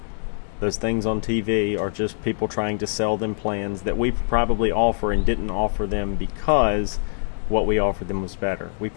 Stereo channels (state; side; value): silent; right; 63 dB below the other